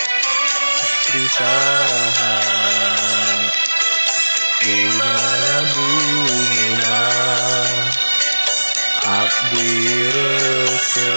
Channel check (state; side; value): inverted; both; correlation -1.00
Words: Trisaha di mana bumina abdi